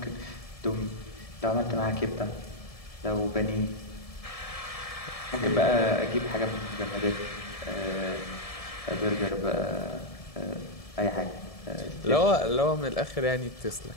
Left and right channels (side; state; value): right; late; 1.7 ms